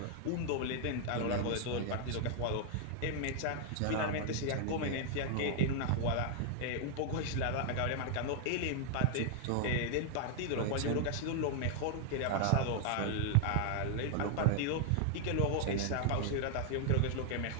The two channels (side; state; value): both; different; correlation 0.00